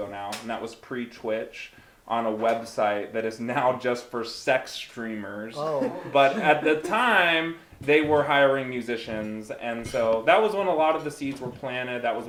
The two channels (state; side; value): identical; both; correlation 1.00